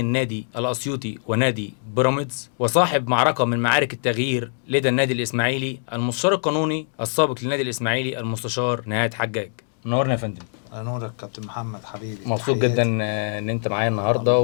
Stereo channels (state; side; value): silent; right; digital silence